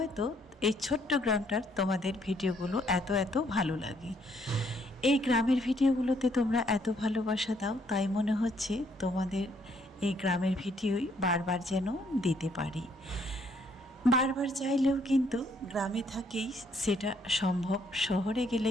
এই ছোট্ট গ্রামটার তোমাদের ভিডিওগুলো এত ভালো লাগে। এই গ্রামের ভিডিওগুলোতে তোমরা এত ভালোবাসা দাও, তাই মনে হচ্ছে তোমাদের এই গ্রামের ভিডিওই বারবার যেন দিতে পারি। বারবার চাইলেও কিন্তু গ্রামে থাকেই সেটা সম্ভব, শহরে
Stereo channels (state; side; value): normal; both; correlation 0.68